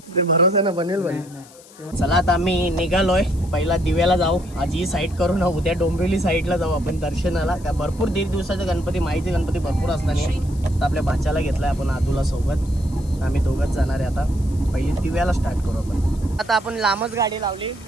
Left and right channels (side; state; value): left; noise; hiss, 23 dB below the sound